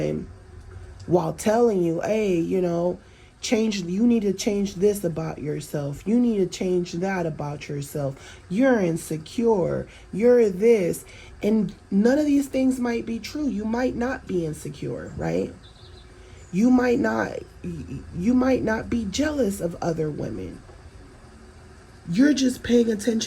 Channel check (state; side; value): identical; both; correlation 1.00